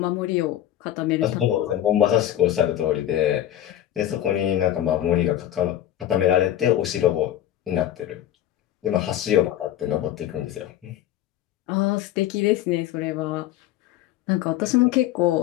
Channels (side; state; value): right; quieter; 12.3 dB